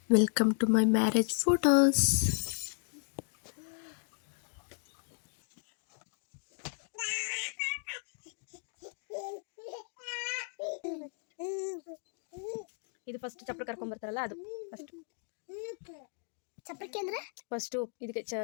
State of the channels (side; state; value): right; silent; 55 dB below the other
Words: Welcome to my marriage photos. ಇದು ಫಸ್ಟ್ ಚಪ್ಪಲಿ ಕರ್ಕೊಂಡ್ ಬರ್ತಾರಲ್ಲ, ಅದು ಫಸ್ಟ್ ಚಪ್ಪಲಿಕೆ ಅಂದ್ರೆ ಫಸ್ಟ್ ಇದಕ್ಕೆ